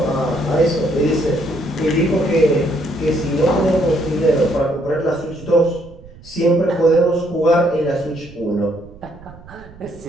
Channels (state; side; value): noise; right; rumble, 21 dB below the sound